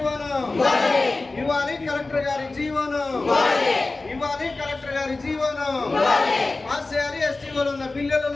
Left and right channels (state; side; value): quieter; right; 3.4 dB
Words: ఇవ్వాలి. కలెక్టర్ గారి జీవోను ఇవ్వాలి. కలెక్టర్ గారి జీవోను పాస్ చేయాలి. ఎస్టీఓలో ఉన్న